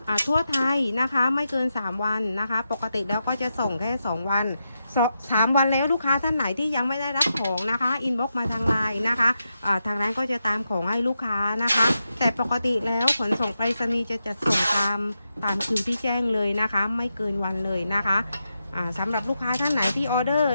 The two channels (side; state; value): both; inverted; correlation -0.87